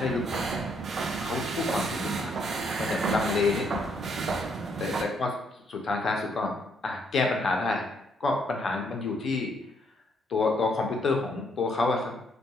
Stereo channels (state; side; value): normal; both; correlation 0.71